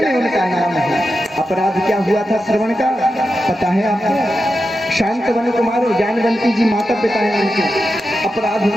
उनका नाम है। अपराध क्या हुआ था श्रवण का, पता है आपको? शांतनु कुमार और ज्ञानवंती जी माता पिता हैं उनके। अपराध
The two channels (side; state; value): both; normal; correlation 0.90